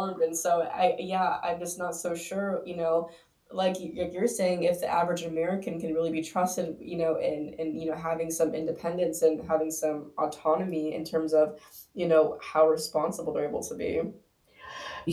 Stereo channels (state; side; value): identical; both; correlation 1.00